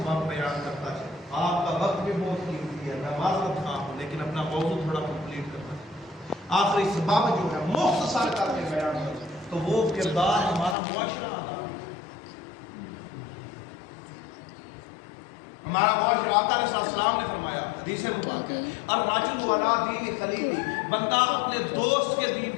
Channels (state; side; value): drops out; right; at 10.8 s